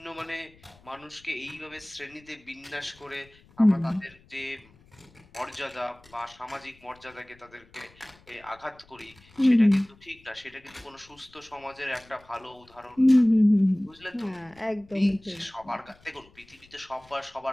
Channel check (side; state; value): left; noise; rumble, 27 dB below the sound